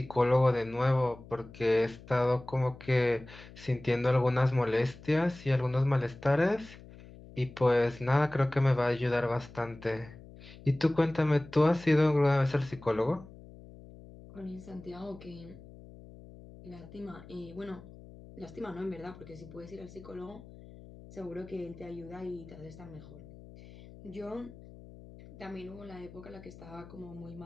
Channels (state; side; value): noise; left; hum, 18 dB below the sound